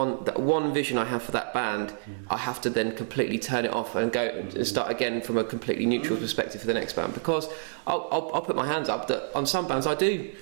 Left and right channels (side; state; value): left; silent; digital silence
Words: vision I have for that band, I have to then completely turn it off and go and start again from a completely neutral perspective for the next band, because I'll put my hands up that on some bands I do